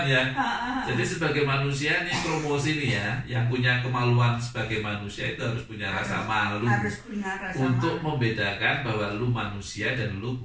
ya. Jadi sebagai manusia nih promosi nih ya, yang punya kemaluan sebagai manusia itu harus punya rasa malu, untuk membedakan bahwa lu manusia dan lu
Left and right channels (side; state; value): both; identical; correlation 1.00